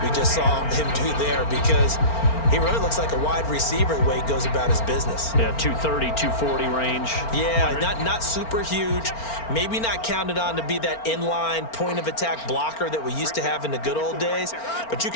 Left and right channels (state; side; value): late; right; 4.4 ms